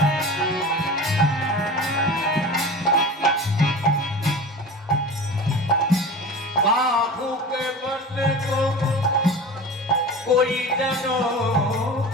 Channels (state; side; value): normal; both; correlation 0.34